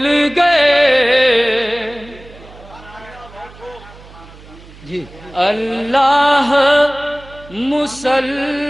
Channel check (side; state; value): right; noise; hum, 21 dB below the sound